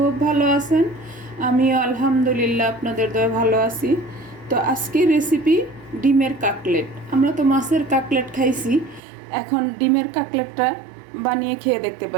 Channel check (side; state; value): left; drops out; at 9.0 s